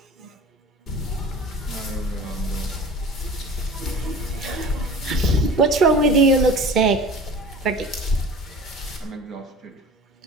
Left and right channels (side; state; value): both; normal; correlation 0.39